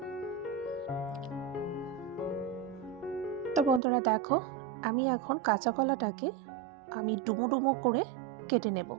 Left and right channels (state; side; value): drops out; left; at 3.8 s